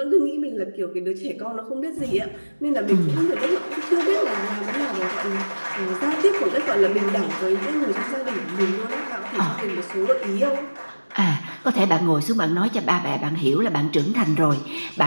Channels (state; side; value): inverted; both; correlation -1.00